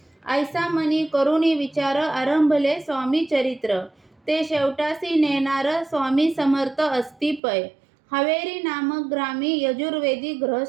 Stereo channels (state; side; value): drops out; left; at 7.4 s